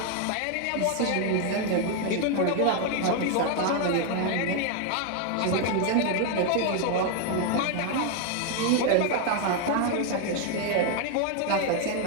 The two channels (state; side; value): different; both; correlation 0.01